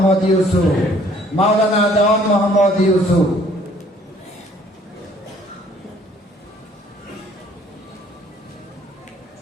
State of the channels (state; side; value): normal; both; correlation 0.59